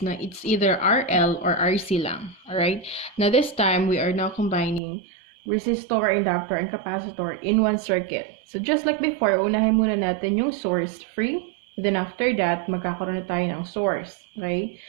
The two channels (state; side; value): drops out; left; at 4.8 s